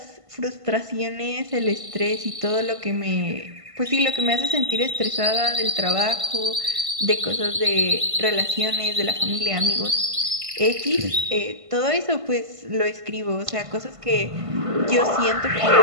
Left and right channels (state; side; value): late; left; 1.5 ms